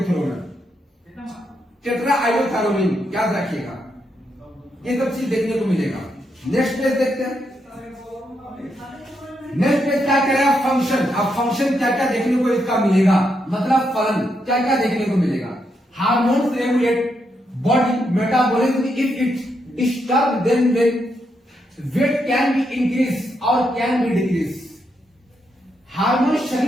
थ्रू में। टेट्राआइडोथैरोनिन याद रखिएगा, ये सब चीज देखने को मिलेगा। नेक्स्ट पेज देखते हैं। नेक्स्ट पेज क्या कह रहा है, फंक्शन। अब फंक्शन क्या क्या देखने को इसका मिलेगा, मतलब फलन क्या क्या देखने को मिलेगा। Hormones regulate body metabolism if it disturb then weight can be increase और कैन बी डिक्रीज। हार्मोन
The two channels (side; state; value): both; normal; correlation 0.80